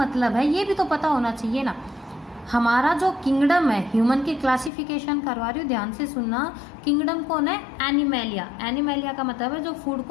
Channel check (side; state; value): right; drops out; at 4.7 s